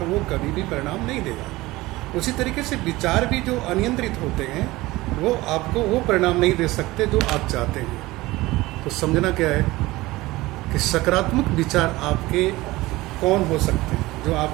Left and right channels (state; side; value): quieter; left; 19.4 dB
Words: वो कभी भी परिणाम नहीं देगा। उसी तरीके से विचार भी जो अनियंत्रित होते हैं वो आपको वो परिणाम नहीं दे सकते जो आप चाहते हैं। तो समझना क्या है कि सकारात्मक विचार आपके कौन हो सकते हैं, जो